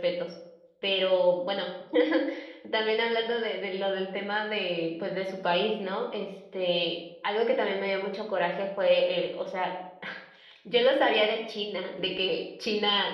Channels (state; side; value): identical; both; correlation 1.00